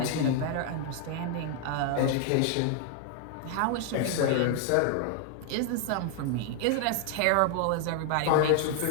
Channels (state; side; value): different; both; correlation 0.00